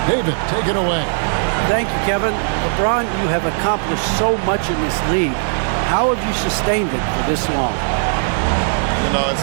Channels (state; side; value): silent; left; digital silence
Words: David, take it away. Thank you, Kevin. LeBron, you have accomplished so much in this league. How have you sustained it for this long? You know, it's